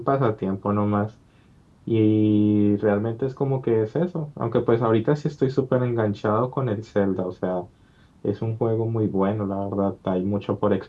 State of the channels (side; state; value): both; identical; correlation 1.00